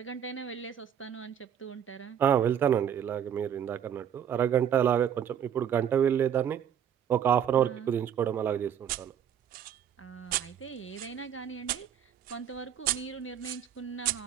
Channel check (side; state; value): left; quieter; 9.1 dB